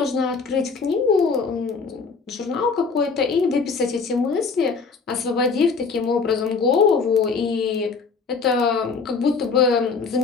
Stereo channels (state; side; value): quieter; right; 4.9 dB